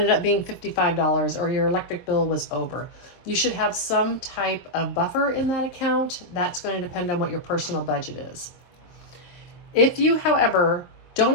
up being $55 or your electric bill was over. You should have some type of buffer in that account. That's going to depend on what your personal budget is. If you, however,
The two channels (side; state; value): right; late; 23 ms